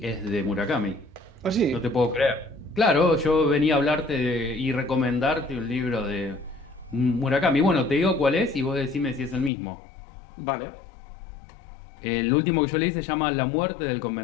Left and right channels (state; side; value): drops out; right; at 9.5 s